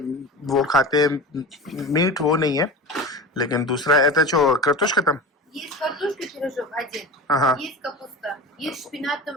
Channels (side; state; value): both; normal; correlation 0.31